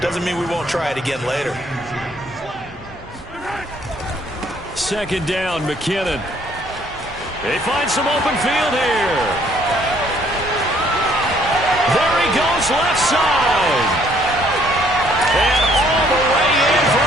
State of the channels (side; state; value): both; normal; correlation 0.63